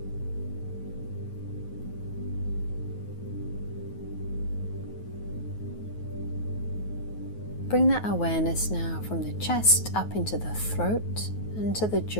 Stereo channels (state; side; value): late; right; 9.4 ms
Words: Bring that awareness now from the chest up into the throat and to the